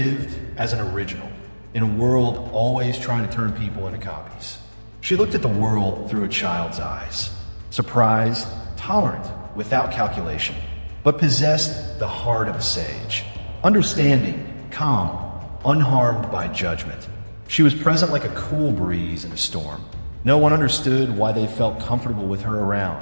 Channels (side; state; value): both; inverted; correlation -1.00